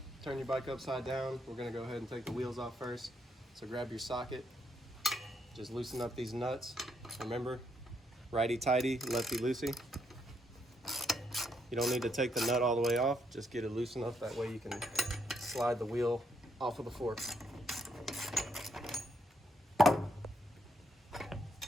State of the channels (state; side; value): normal; both; correlation 0.75